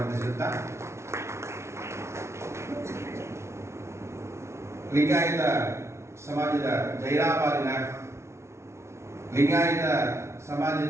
ಲಿಂಗಾಯತ ಸಮಾಜದ ಜೈರಾಬಾದಿನ ಲಿಂಗಾಯತ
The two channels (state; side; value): late; left; 0.13 ms